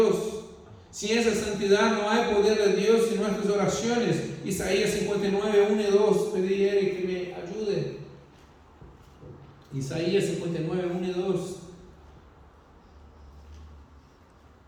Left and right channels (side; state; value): both; identical; correlation 1.00